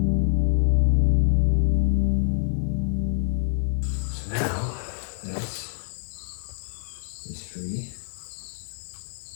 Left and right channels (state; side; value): silent; right; digital silence